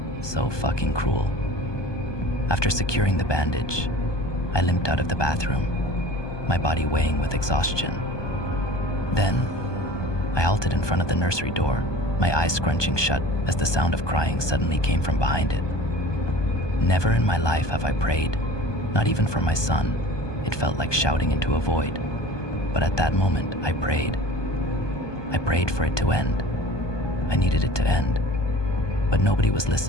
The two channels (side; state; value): right; late; 1.2 ms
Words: So fucking cruel. After securing the bandage, I limped out of the bathroom, my body weighing with exhaustion. Then, I halted in front of the nursery door, my eyes scrunching shut as the sound of crying suddenly came from behind it. Never in my life have I prayed, not even for my son. It felt like shouting into a void. But at that moment, I prayed. I prayed for it to end. I needed it to end. But nobody was